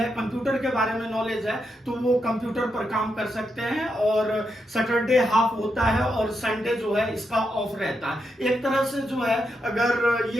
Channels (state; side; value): normal; both; correlation 0.83